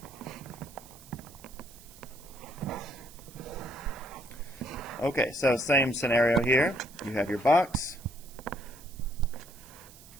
Okay, so same scenario here. You have your box.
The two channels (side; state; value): right; noise; hiss, 20 dB below the sound